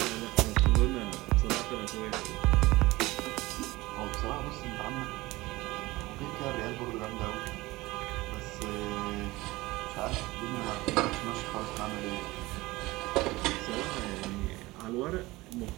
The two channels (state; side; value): quieter; left; 20.3 dB